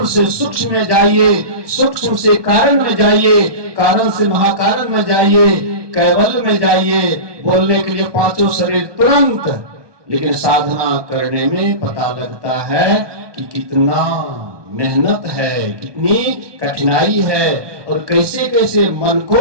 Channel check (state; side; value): late; left; 1.2 ms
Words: से सूक्ष्म में जाइए, सूक्ष्म से कारण में जाइए, कारण से महाकारण में जाइए, कैवल्य में जाइए। बोलने के लिए पांचों शरीर तुरंत, लेकिन साधना करने में पता लगता है कि कितना मेहनत है, कितनी कठिनाई है, और कैसे कैसे मन